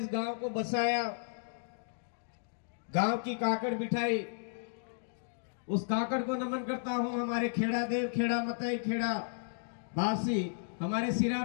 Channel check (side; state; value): right; silent; digital silence